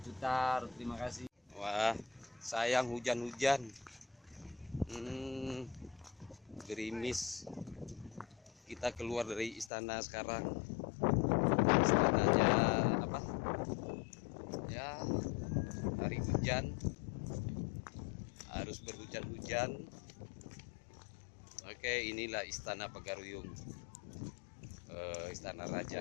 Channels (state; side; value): drops out; right; at 9.7 s